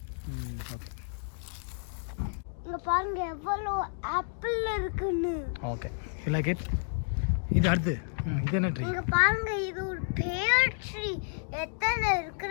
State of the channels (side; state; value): right; silent; digital silence